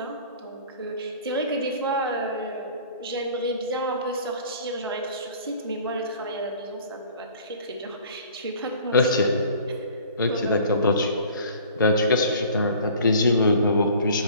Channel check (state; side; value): inverted; both; correlation -0.49